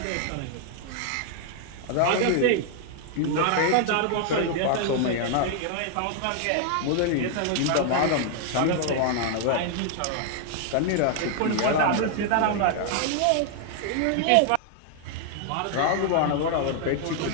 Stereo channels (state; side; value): different; both; correlation 0.00